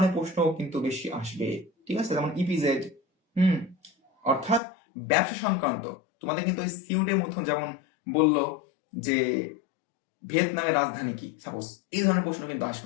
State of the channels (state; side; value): drops out; right; at 4.6 s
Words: প্রশ্ন কিন্তু বেশি আসবে। ঠিক আছে, যেমন ইপিজেড, অর্থাৎ ব্যবসা সংক্রান্ত। তোমাদের কিন্তু সিউটের মতো যেমন বললো যে ভিয়েতনামের রাজধানী কি, সাপোজ এই ধরনের প্রশ্ন কিন্তু